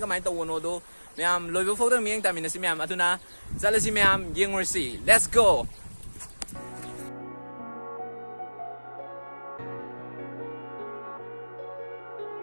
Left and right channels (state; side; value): inverted; both; correlation -1.00